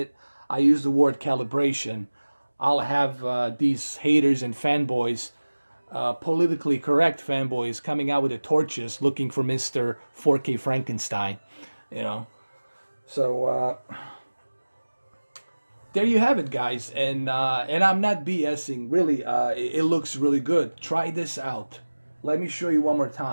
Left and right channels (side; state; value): both; inverted; correlation -1.00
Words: I use the word calibration. I'll have these haters and fanboys, politically correct fanboys, coming out with the torches looking for Mr. 4K Frankenstein, you know. So there you have it, guys, and I'm not BSing. Really, it looks really good. Try this out. Let me show you one more